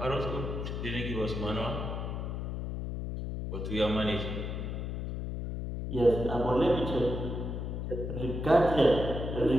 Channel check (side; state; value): left; noise; hum, 4 dB below the sound